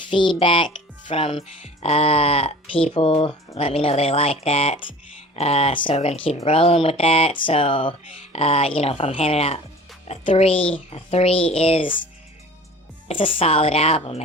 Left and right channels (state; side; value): normal; both; correlation 0.43